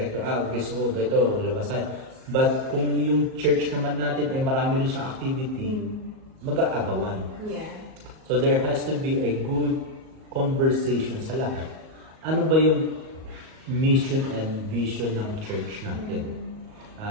Gusto ko ito, labas tayo. But kung yung church naman natin ay marami rin siyang activity, mag-aagawan. Yeah. So there has to be a good conversation sa lahat. Ano ba yung mission and vision ng church natin?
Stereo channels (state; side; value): late; left; 38 ms